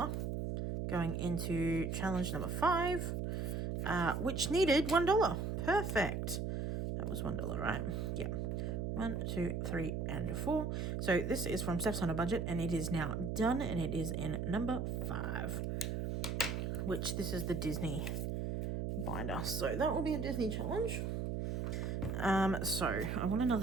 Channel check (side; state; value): right; noise; hum, 1 dB below the sound